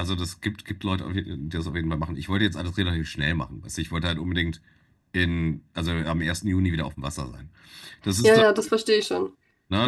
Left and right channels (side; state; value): both; identical; correlation 1.00